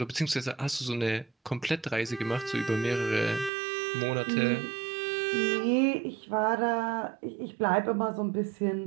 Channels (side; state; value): left; drops out; at 3.5 s